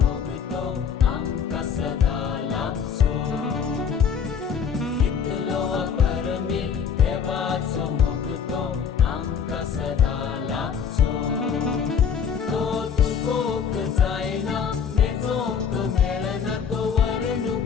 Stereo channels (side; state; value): right; quieter; 7.1 dB